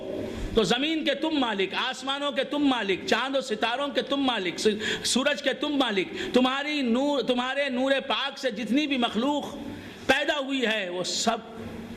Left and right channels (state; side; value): identical; both; correlation 1.00